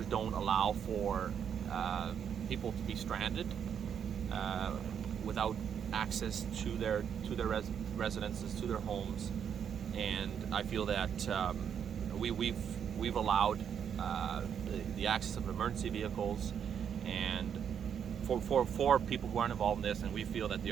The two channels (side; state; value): left; quieter; 8.1 dB